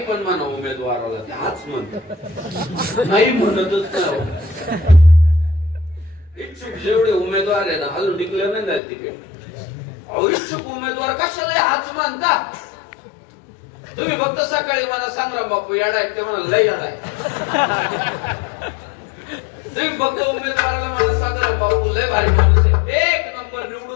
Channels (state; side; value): drops out; right; at 8.8 s